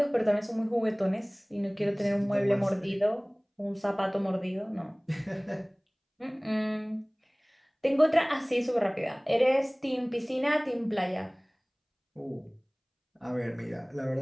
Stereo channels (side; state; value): both; identical; correlation 1.00